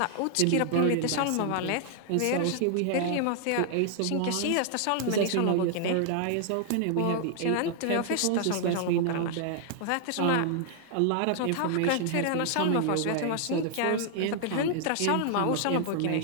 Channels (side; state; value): both; different; correlation 0.00